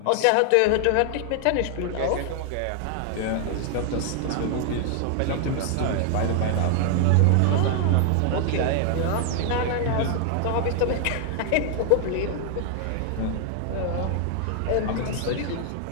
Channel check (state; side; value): different; both; correlation 0.00